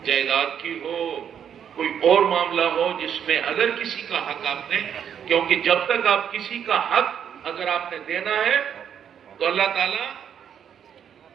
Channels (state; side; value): quieter; left; 8.6 dB